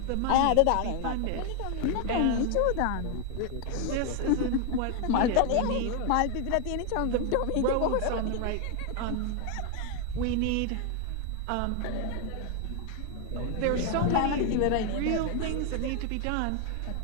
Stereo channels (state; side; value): different; both; correlation 0.01